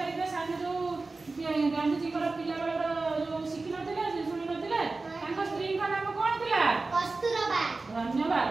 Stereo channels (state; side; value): quieter; left; 3.6 dB